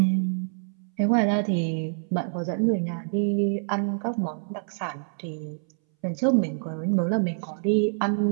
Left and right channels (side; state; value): left; silent; 61 dB below the other